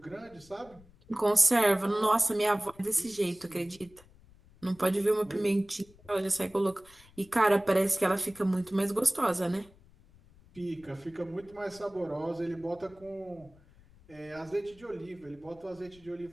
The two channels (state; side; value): noise; left; rumble, 26 dB below the sound